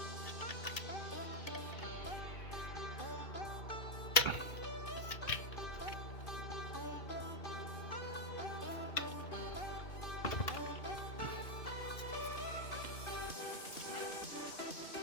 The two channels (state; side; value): late; right; 2.5 ms